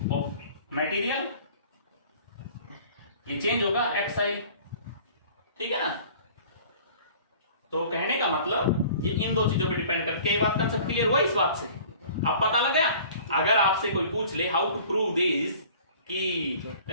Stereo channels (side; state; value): both; inverted; correlation -0.48